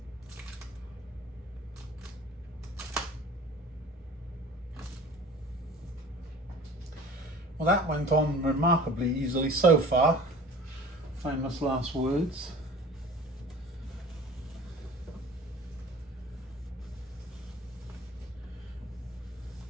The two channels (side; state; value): both; normal; correlation 0.43